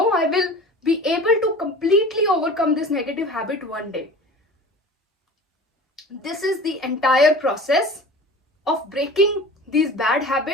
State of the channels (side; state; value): both; normal; correlation 0.39